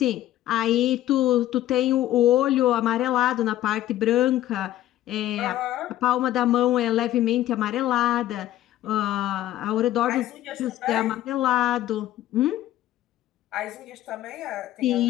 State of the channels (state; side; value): quieter; right; 13.7 dB